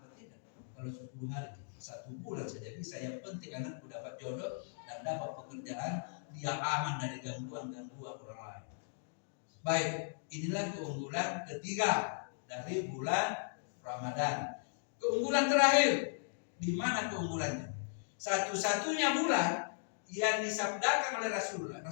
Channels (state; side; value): silent; right; digital silence